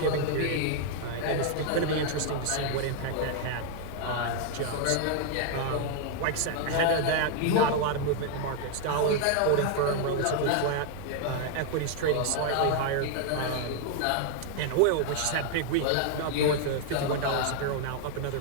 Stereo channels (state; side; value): different; both; correlation 0.00